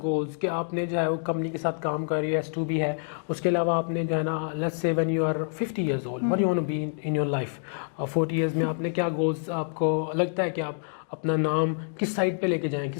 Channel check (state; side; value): silent; right; digital silence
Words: कि आपने जो है वो कंपनी के साथ काम कर रही है, S2B है, उसके अलावा आपने जो है ना let's say when you are 50 years old what you want to be in your life, 40 years में आपने क्या गोल्स, आपको लगता है कि आप अपना नाम किस साइड पे लेके जाएं,